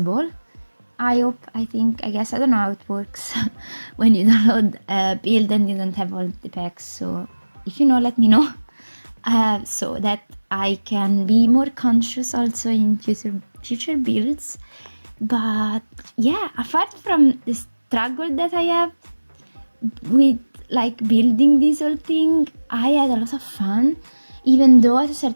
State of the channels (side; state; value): both; inverted; correlation -1.00